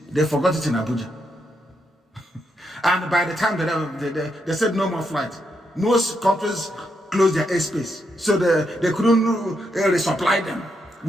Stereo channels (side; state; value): both; normal; correlation 0.80